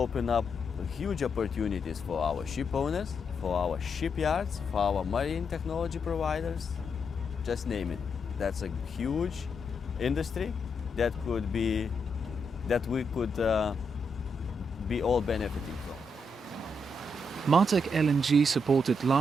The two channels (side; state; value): both; normal; correlation 0.81